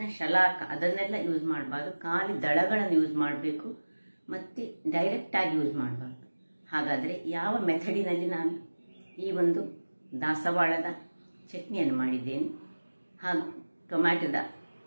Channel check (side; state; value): both; inverted; correlation -1.00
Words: ಶಲಾಕ ಅದನ್ನೆಲ್ಲ ಯೂಸ್ ಮಾಡಬಾರ್ದು, ಖಾಲಿ ದಳಗಳನ್ನು ಯೂಸ್ ಮಾಡಬೇಕು ಮತ್ತು ಡೈರೆಕ್ಟಾಗಿ ಯೂಸ್ ಮಾಡಬಾರ್ದು. ಹಾಗಾದರೆ ಯಾವ ಮೆಥಡಿನಲ್ಲಿ ನಾನು ಈ ಒಂದು ದಾಸವಾಳದ ಚಟ್ನಿಯನ್ನು ಮಾಡಿದ್ದೇನೆ ಹಾಗೂ ಟೊಮ್ಯಾಟೊದ